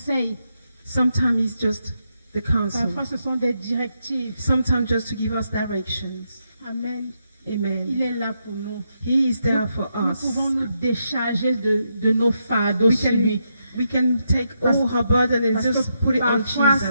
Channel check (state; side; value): inverted; both; correlation -0.82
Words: Sometimes it's just the counsel. Parfois, ce sont des directives. Sometimes just to give us directions. Amen. Amen. Il est là pour nous. He is there for Nous us. pouvons nous décharger de nos fardeaux sur lui. We can take all her burden and Parce just que put it on parfois,